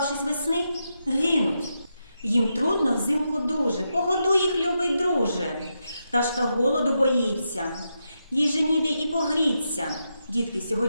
весни, гинуть. Їм трудно взимку дуже, погодуй їх, любий друже. Пташка голоду боїться, їй же ніде і погріться. Дітки,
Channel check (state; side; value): inverted; both; correlation -0.85